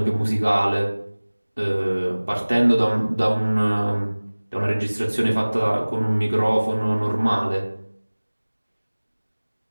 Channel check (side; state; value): both; inverted; correlation -1.00